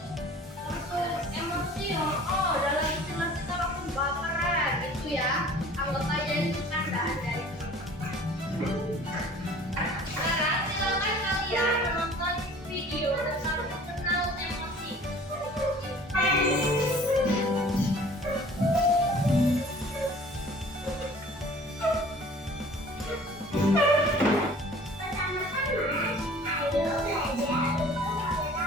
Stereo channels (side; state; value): both; normal; correlation 0.48